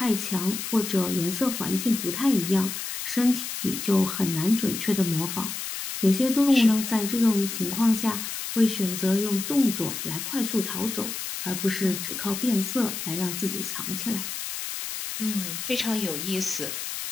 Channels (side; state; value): left; noise; hiss, 5 dB below the sound